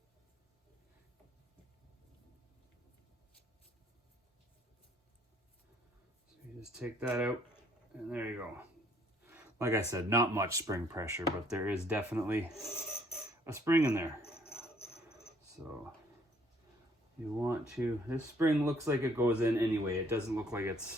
Just take that out, and there you go. Like I said, not much spring pressure, but there is definitely a spring in there. So you want to, this spring looks like it goes in anyway. It doesn't look like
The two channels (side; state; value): both; normal; correlation 0.63